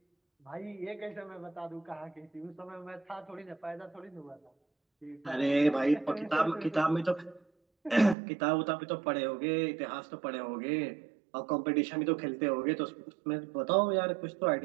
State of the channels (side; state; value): left; drops out; at 8.2 s